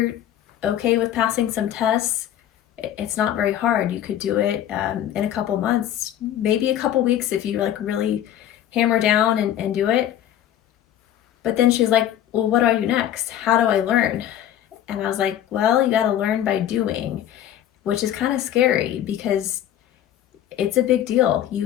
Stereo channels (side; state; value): right; quieter; 11.4 dB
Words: okay with passing some tests, it's not very hard. You could do it in a couple months, maybe a couple weeks if you like really hammer down and do it. But then she's like, well, what do I do next? How do I learn? And I was like, well, you got to learn by doing, which is kind of scary because it's a big deal.